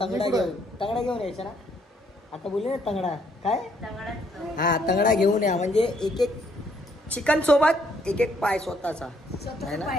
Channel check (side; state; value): both; normal; correlation 0.69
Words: तंगडा घेऊन यायचं ना. आता बोलले ना तंगडा. काय हा तंगडा घेऊन या. म्हणजे एक एक चिकन सोबत एक एक पाय स्वतःचा आहे ना.